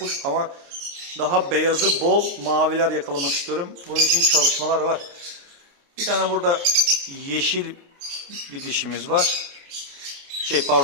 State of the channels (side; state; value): left; late; 29 ms